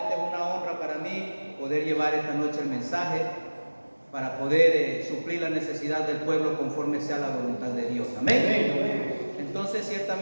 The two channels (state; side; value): inverted; both; correlation -1.00